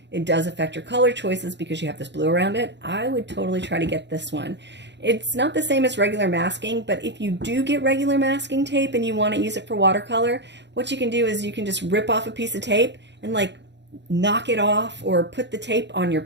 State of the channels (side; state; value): left; late; 0.51 ms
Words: it does affect your color choices because you have this blue around it. I would totally try to get this one. It's not the same as regular masking, but if you do get regular masking tape and you want to use it for watercolor, what you can do is you can just rip off a piece of tape and like knock it off, or put the tape on your